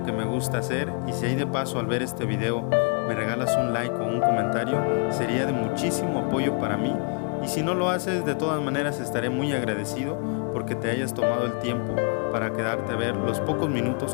que me gusta hacer, y si hay de paso al ver este video me regalas un like o un comentario, sería de muchísimo apoyo para mí. Y si no lo haces, de todas maneras estaré muy agradecido porque te hayas tomado el tiempo para quedarte a ver los pocos minutos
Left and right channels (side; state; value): right; quieter; 39.6 dB